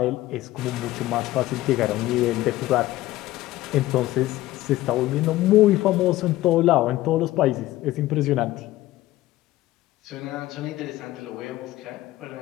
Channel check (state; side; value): quieter; right; 16.3 dB